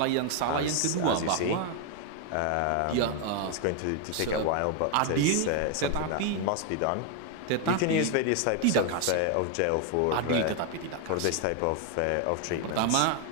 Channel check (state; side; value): different; both; correlation 0.01